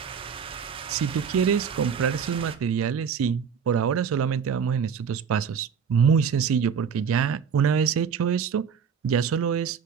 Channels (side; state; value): left; quieter; 6.8 dB